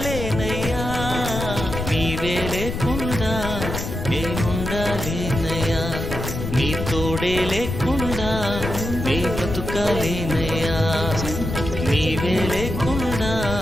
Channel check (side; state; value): left; noise; rumble, 5 dB below the sound